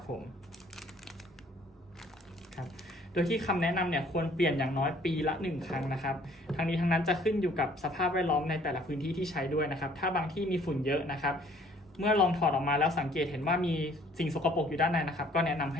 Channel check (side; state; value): both; normal; correlation 0.58